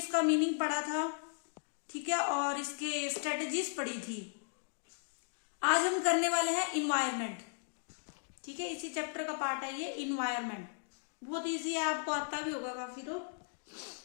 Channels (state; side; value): silent; right; digital silence